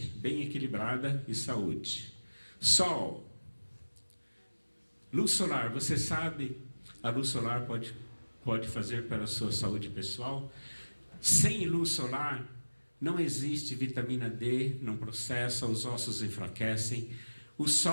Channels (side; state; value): both; inverted; correlation -1.00